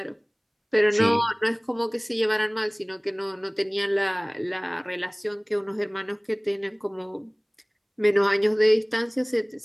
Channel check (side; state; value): both; identical; correlation 1.00